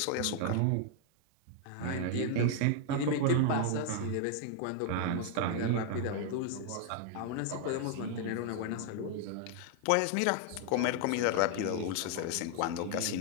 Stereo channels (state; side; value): different; both; correlation 0.00